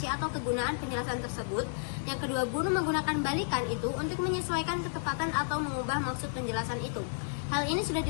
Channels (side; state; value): right; silent; 57 dB below the other